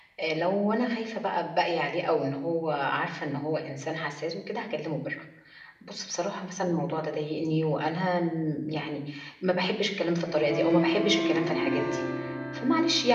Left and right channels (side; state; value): both; identical; correlation 1.00